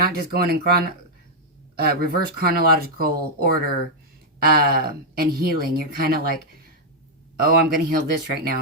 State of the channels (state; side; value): normal; both; correlation -0.03